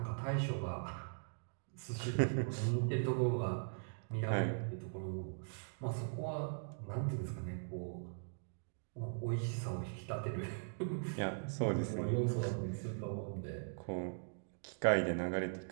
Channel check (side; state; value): left; silent; digital silence